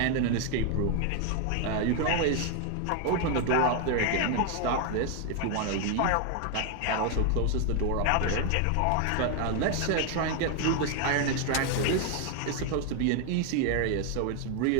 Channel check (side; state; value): both; different; correlation 0.01